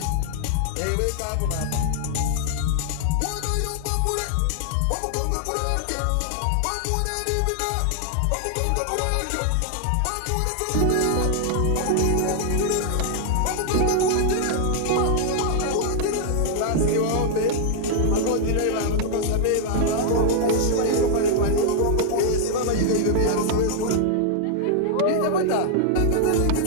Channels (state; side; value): different; both; correlation 0.00